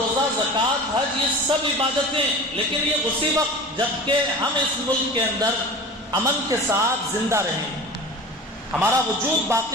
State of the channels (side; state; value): both; normal; correlation 0.35